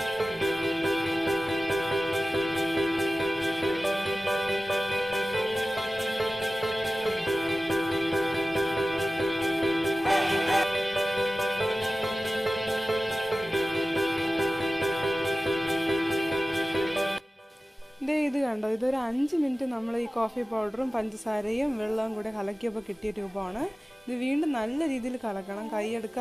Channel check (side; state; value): both; normal; correlation 0.96